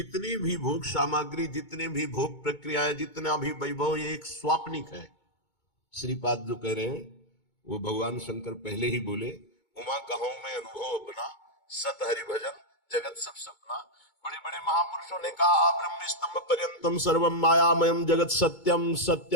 भी भोग सामग्री, जितने भी भोग प्रक्रियाएं, जितना भी वैभव, ये एक स्वाप्निक है। श्रीपाद जो कह रहे हैं वो भगवान शंकर पहले ही बोले, उमा कहूं मैं अनुभव अपना, सत हरि भजन जगत सब सपना। बड़े बड़े महापुरुषों ने कहा, ब्रह्म स्तंभ पर्यंतम सर्वम मायामयम जगत सत्यम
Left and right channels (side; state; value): right; late; 2.2 ms